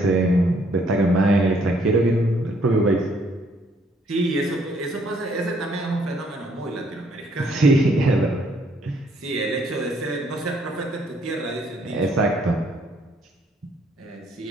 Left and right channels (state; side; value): normal; both; correlation 0.67